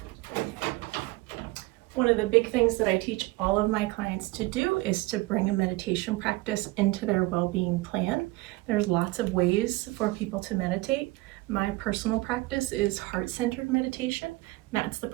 One of the big things that I teach all of my clients to do is to bring a meditation practice into their well-being plan. There's lots of ways for people to meditate. My personal practice is heart-centered meditation. That's the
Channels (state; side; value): quieter; left; 21.2 dB